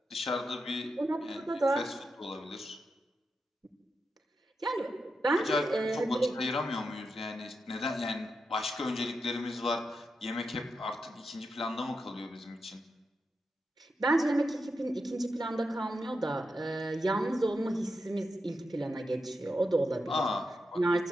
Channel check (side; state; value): both; normal; correlation 0.87